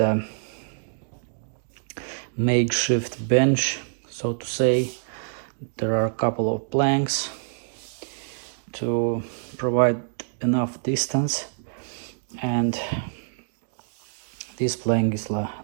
makeshift bench, so to say. There are a couple of planks to provide enough distance, and this plank is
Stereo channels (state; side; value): silent; left; digital silence